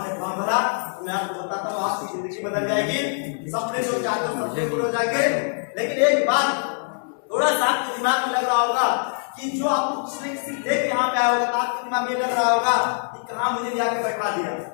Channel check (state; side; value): silent; right; 63 dB below the other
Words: फॉर्म भरा तो मैं आपको बताता हूँ आपकी जिंदगी बदल जाएगी, सपने जो चाहते हो सपने पूरे हो जाएंगे। लेकिन एक बात थोड़ा सा आपके दिमाग में लग रहा होगा कि जो आपको किसी किसी देख यहाँ पे आया होगा तो आपके दिमाग में लग रहा होगा कि कहाँ मुझे लिया के बैठा दिया,